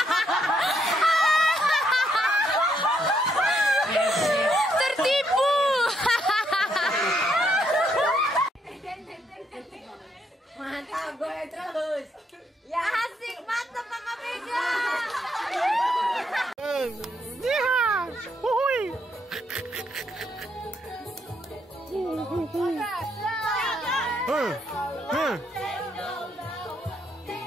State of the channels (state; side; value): normal; both; correlation 0.74